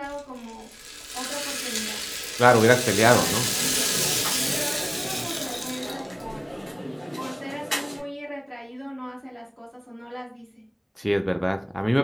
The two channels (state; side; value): identical; both; correlation 1.00